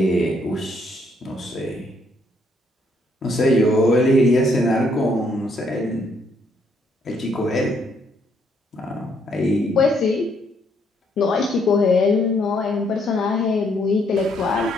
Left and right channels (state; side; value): normal; both; correlation 0.70